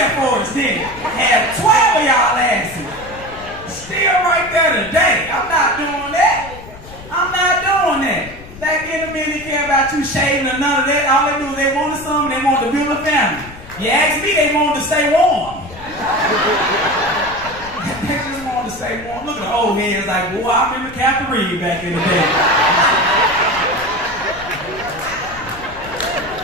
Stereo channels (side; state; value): left; noise; rumble, 17 dB below the sound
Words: for us, didn't he? Had 12 of y'all asses. Still right there today. I'm not doing that. I'm not doing that. Back in the minute, they care about you shaving or none of that. All they do is they wanted something, they wanted to build a family. You ask me, they wanted to stay warm. They just wanted to stay warm. Look at the old heads like, boy, I remember Captain Reed back in the day.